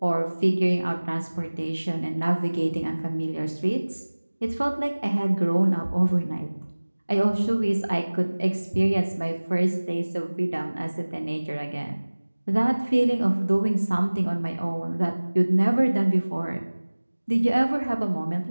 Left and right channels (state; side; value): inverted; both; correlation -1.00